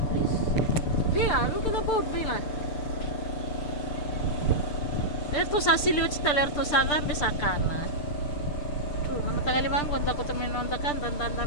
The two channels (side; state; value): right; late; 6.8 ms